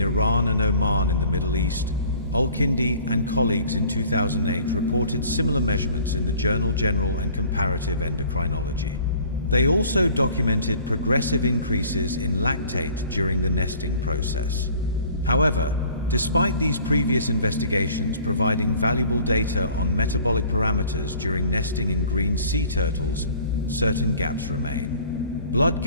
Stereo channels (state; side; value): inverted; both; correlation -0.52